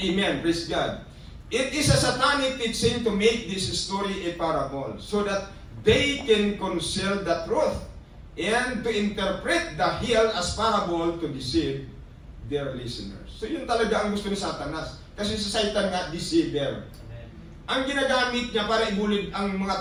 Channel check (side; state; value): both; identical; correlation 1.00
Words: praise God. It is a satanic teaching to make this story a parable so that they can conceal the truth and to interpret the hell as parable to deceive their listeners. So yun talaga ang gusto ni Satanas. Kasi sa Satan nga, deceiver. Ang ginagamit niya para ibulid ang mga